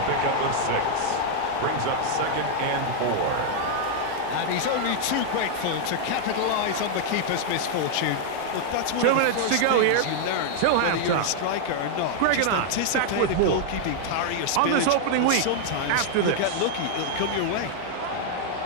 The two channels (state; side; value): different; both; correlation 0.00